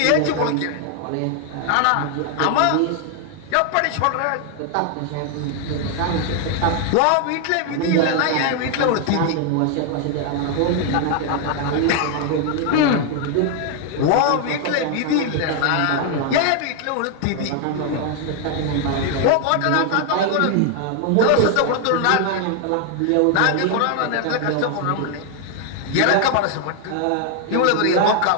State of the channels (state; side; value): different; both; correlation 0.00